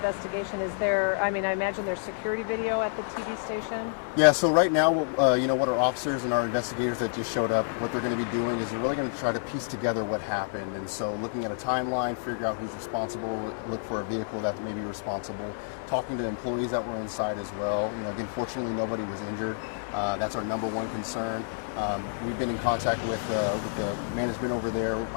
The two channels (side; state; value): right; silent; digital silence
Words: Is there, I imagine there's security video at the TV station? Yeah, so right now, what our officers and our investigators that just showed up, what they're going to be doing is they're really going to try to piece together what happened. And so looking at a timeline, figure out who's responsible, look for a vehicle that may be responsible, talking to employees that were inside as well. Again, fortunately, nobody was injured. That's our number one concern. We've been in contact with the management over there.